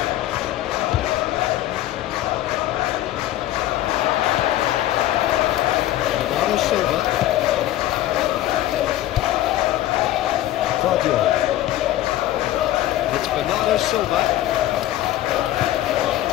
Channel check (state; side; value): quieter; right; 14.2 dB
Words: Bernardo Silva. Claudio. It's Bernardo Silva.